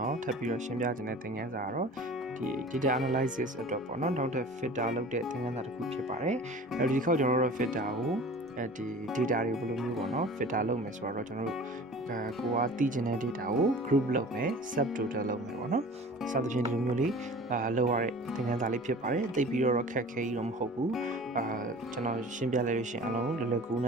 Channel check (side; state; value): both; normal; correlation 0.42